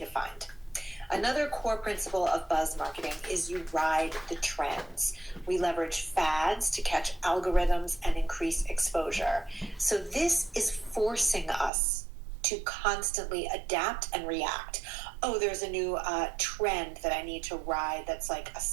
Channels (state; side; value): drops out; left; at 11.7 s